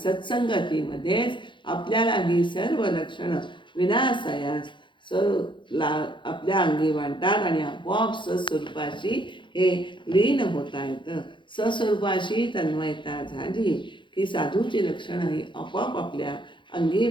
आपल्याला ही सर्व लक्षणं विनासायास आपल्या अंगी वाटतात आणि आपोआप सस्वरूपाशी हे लीन होता येतं. सस्वरूपाशी तन्मयता झाली की साधूची लक्षणं ही आपोआप आपल्या अंगी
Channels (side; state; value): right; late; 0.23 ms